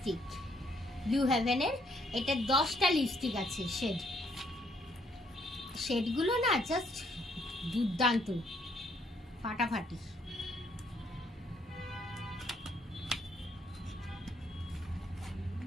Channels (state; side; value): normal; both; correlation 0.69